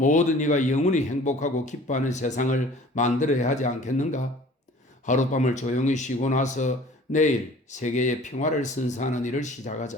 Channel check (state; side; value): normal; both; correlation 0.47